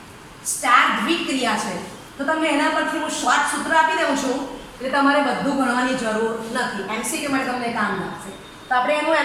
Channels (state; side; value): identical; both; correlation 1.00